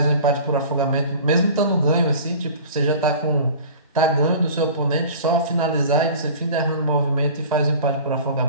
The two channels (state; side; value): inverted; both; correlation -0.41